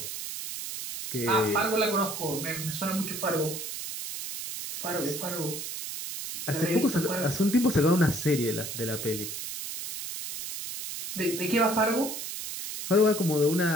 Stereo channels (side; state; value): right; noise; hiss, 7 dB below the sound